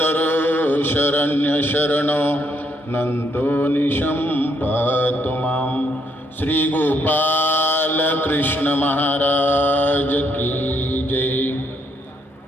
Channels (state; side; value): normal; both; correlation 0.73